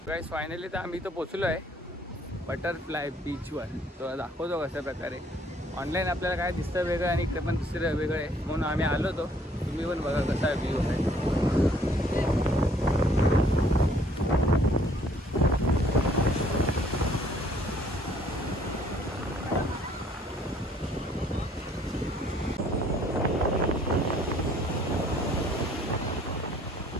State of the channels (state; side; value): normal; both; correlation 0.61